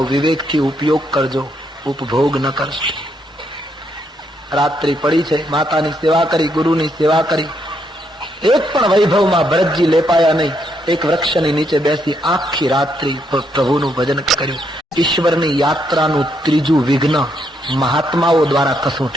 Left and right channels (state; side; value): normal; both; correlation 0.76